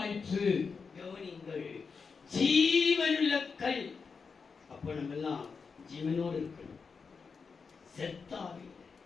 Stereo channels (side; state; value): right; quieter; 5.3 dB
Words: கவனிங்கள், ஜீவனுள்ள கல். அப்ப நம்ம எல்லாம் ஜீவனோடு இருக்கணும். செத்தாவே